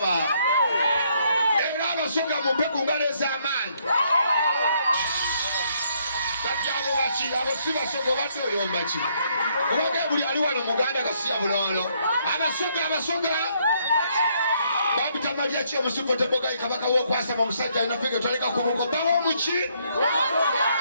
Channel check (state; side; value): inverted; both; correlation -0.71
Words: era abasoga mupeku ngaleza amaanyi Abo bachi abo siba sogo batyo yombachi kubanga buli ali wano muganda kasiya bulolo abasoga babita Mariachi omusifu teboga ikabaka wo kwasa mu musajja ina fege twaleka kubuko bawo muchi